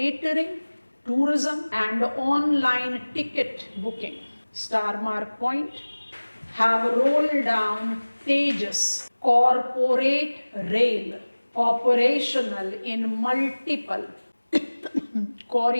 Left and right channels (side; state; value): both; inverted; correlation -1.00